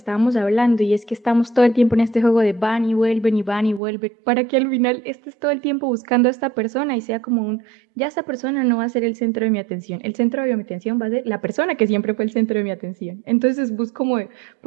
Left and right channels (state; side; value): drops out; left; at 3.8 s